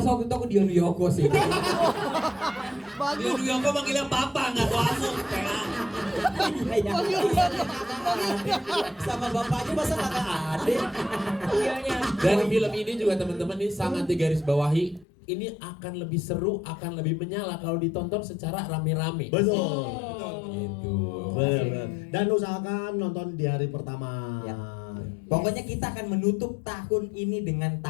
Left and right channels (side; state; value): right; drops out; at 15.1 s